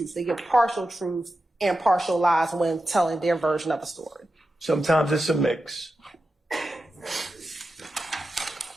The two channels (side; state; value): both; normal; correlation 0.91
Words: they give partial truths and partial lies when telling their version of a story? Sometimes it's a mix.